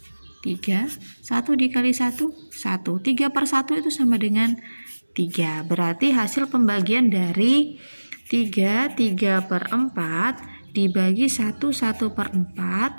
3, 1 dikali 1 1. 3/1 itu sama dengan 3. Berarti hasil pembagian dari 3/4 dibagi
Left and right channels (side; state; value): both; inverted; correlation -1.00